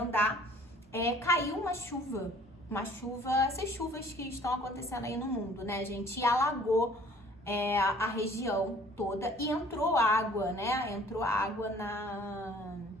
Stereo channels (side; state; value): both; normal; correlation 0.53